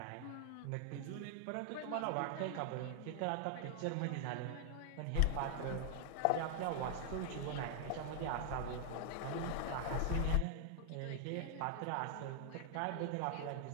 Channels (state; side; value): different; both; correlation 0.00